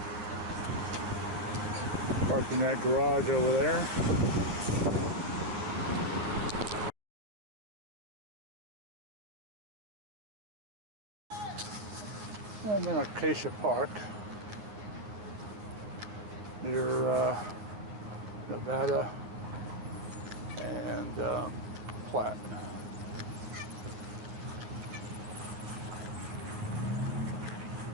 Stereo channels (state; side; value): late; left; 9.8 ms